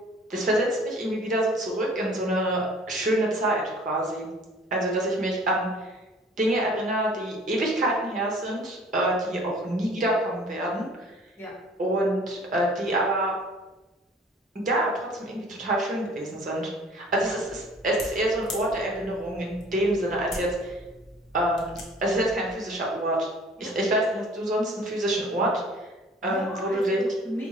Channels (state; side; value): normal; both; correlation 0.51